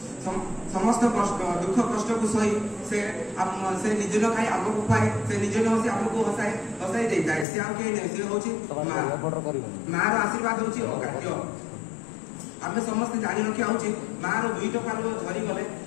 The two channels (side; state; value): right; drops out; at 7.5 s